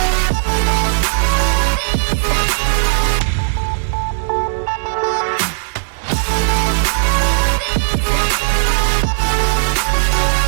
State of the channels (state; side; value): silent; left; 61 dB below the other